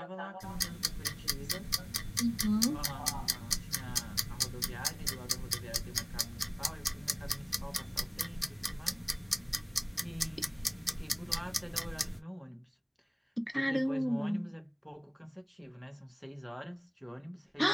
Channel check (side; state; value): both; identical; correlation 1.00